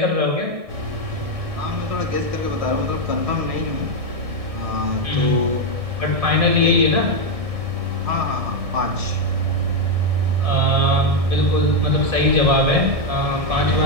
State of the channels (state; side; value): late; left; 1.6 ms